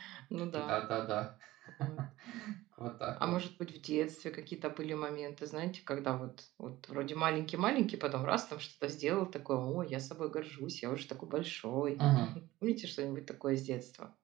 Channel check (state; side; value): quieter; left; 17.3 dB